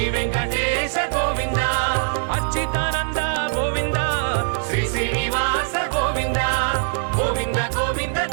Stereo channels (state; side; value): silent; left; digital silence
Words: వెంకటేశ గోవింద అచ్యుతానంద గోవింద శ్రీ శ్రీనివాస గోవింద గోవింద గోవింద